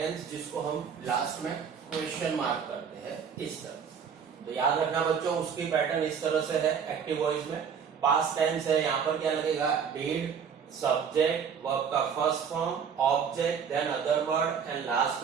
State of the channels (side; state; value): left; quieter; 7.0 dB